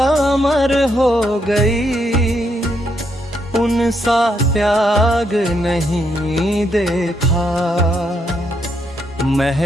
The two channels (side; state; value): both; normal; correlation 0.77